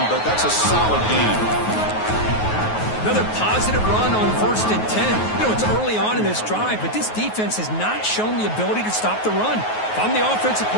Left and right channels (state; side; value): late; right; 9.4 ms